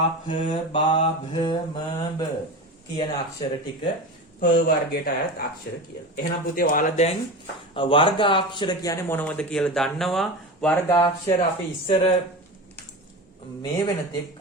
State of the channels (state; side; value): normal; both; correlation 0.27